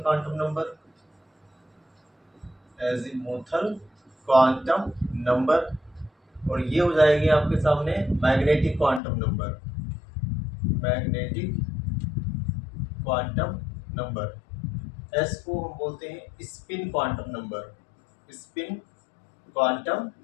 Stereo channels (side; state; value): right; drops out; at 9.0 s